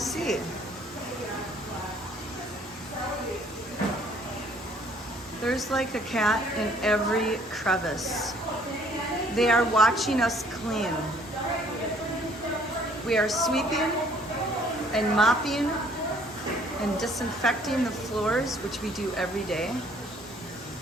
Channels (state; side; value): normal; both; correlation 0.60